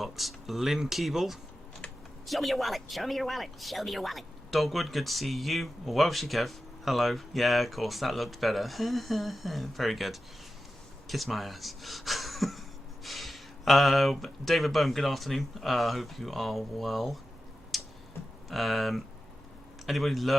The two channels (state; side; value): normal; both; correlation 0.92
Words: Lynn Keeble. Show me your wallet. Show me your wallet. Show me your wallet. Dogwood, good to see you. Welshie Kev, hello. Yeah, of course, that looked better. Very good. Kiss my ass. David Boehm, good afternoon. Hope you are well. Anybody